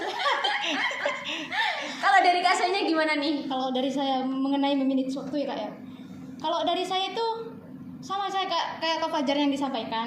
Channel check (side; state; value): both; identical; correlation 1.00